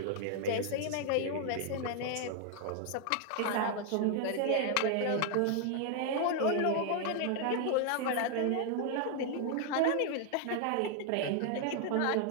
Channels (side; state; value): both; different; correlation 0.00